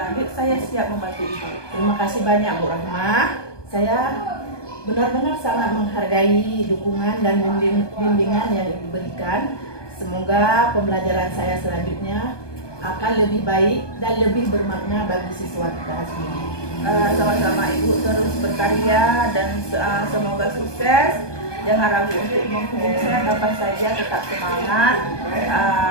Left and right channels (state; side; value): late; right; 1.2 ms